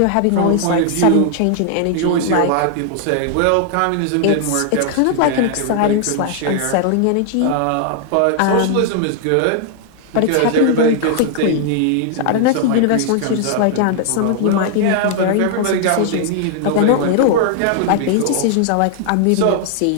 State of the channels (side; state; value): both; different; correlation 0.00